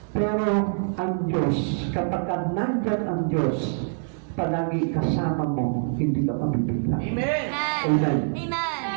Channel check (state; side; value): silent; left; digital silence